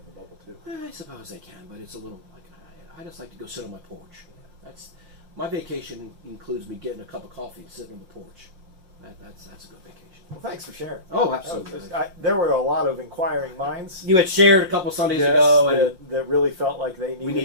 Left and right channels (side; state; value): left; late; 5.6 ms